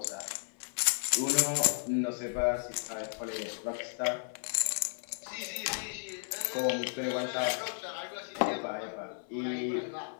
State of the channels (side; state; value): right; silent; 55 dB below the other